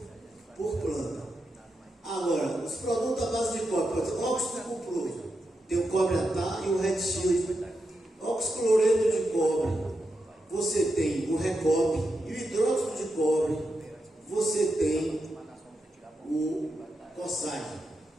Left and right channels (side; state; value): both; normal; correlation 0.86